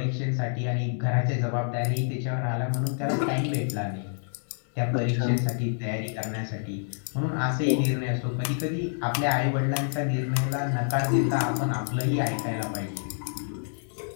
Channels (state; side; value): silent; right; 60 dB below the other